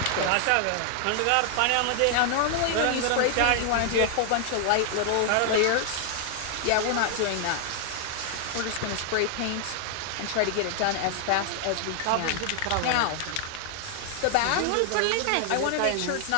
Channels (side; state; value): both; different; correlation 0.00